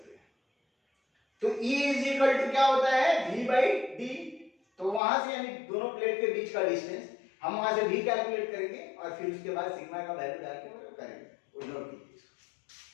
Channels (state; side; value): drops out; right; at 5.0 s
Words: हैं। तो E इज इक्वल टू क्या होता है, V बाई D। तो वहां से यानी दोनों प्लेट के बीच का डिस्टेंस, हम वहां से V कैलकुलेट करेंगे और फिर उसके बाद सिग्मा का वैल्यू डाल के करेंगे, वो नोट कीजिए।